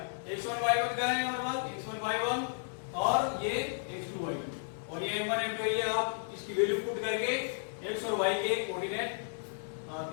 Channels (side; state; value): right; silent; 55 dB below the other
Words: x1 y1 का है हमारे पास, x1 y1 और ये x2 y2 और ये m1 m2 एरिया। आप इसकी वैल्यू पुट करके x और y के कोऑर्डिनेट p